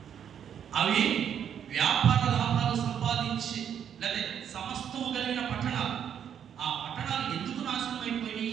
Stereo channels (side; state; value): left; quieter; 8.7 dB